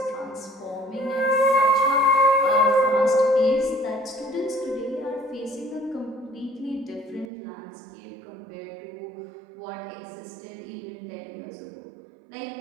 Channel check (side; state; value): left; drops out; at 7.3 s